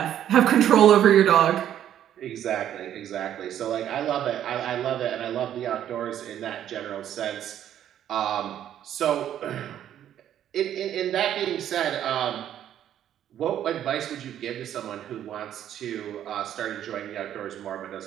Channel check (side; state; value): left; quieter; 10.8 dB